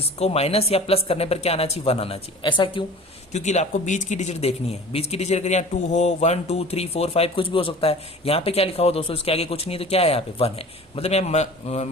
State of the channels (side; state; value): both; normal; correlation 0.41